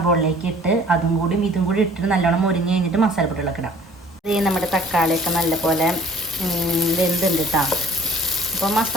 ഇട്ട് അതും കൂടി ഇതും കൂടി ഇട്ടിട്ട് നല്ലോണം മുരിഞ്ഞ് കഴിഞ്ഞിട്ട് മസാലപ്പൊടികളൊക്കെ ഇടാം. ഇത് നമ്മുടെ തക്കാളിയൊക്കെ നല്ലപോലെ വെന്തുണ്ട് കേട്ടോ. അപ്പോൾ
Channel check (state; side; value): normal; both; correlation 0.52